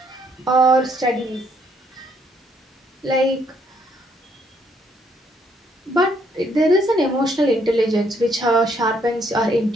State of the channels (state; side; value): normal; both; correlation 0.70